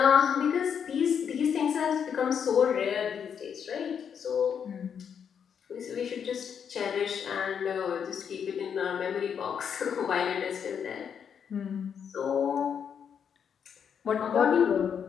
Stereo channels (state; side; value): quieter; right; 7.6 dB